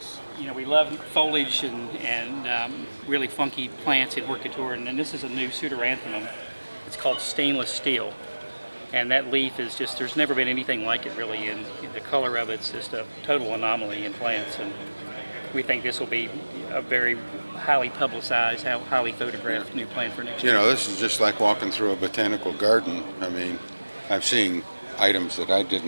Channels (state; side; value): inverted; both; correlation -1.00